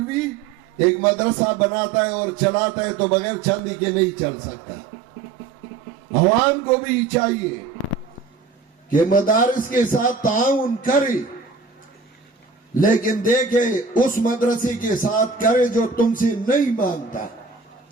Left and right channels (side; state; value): left; quieter; 4.7 dB